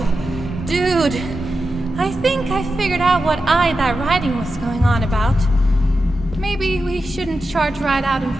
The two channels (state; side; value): normal; both; correlation 0.91